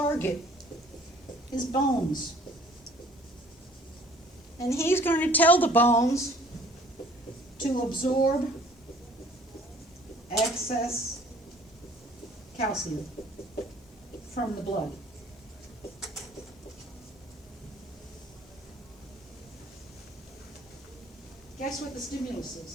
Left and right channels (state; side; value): normal; both; correlation 0.55